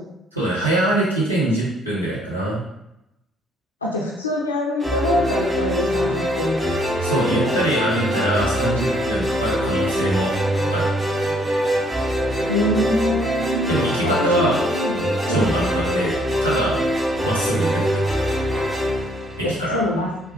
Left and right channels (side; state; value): both; normal; correlation 0.65